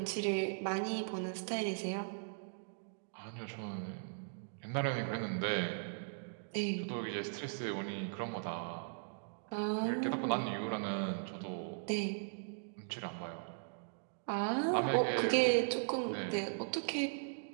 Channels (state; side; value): silent; left; digital silence